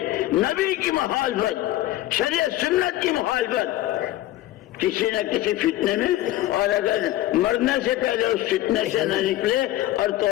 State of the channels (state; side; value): quieter; right; 15.1 dB